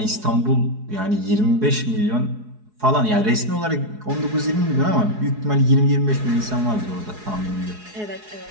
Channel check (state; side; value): late; left; 4.7 ms